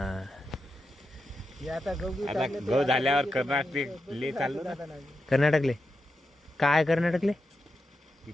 आता आता गहू झाल्यावर कर्नाटक ले चाललो ना. कर्नाटकले काय कर्नाटकले?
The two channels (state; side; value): normal; both; correlation 0.88